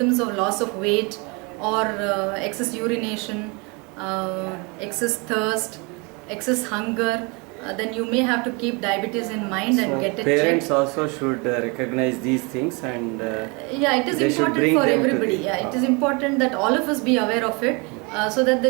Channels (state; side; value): quieter; left; 29.9 dB